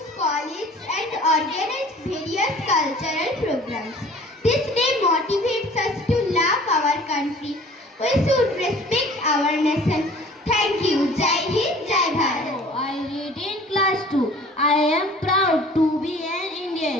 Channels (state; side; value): normal; both; correlation 0.49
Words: colleges and organize various cultural programs. This day motivates us to love our country. We should respect our nation. Thank you. Jai Hind, Jai Bharat. I read in class 2. I am proud to be an